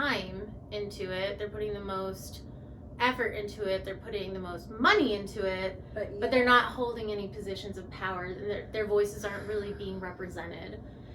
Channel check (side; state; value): both; identical; correlation 1.00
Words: into it, they're putting the most effort into it, they're putting the most money into it, but they're not holding any positions of power. Their voices aren't really being represented.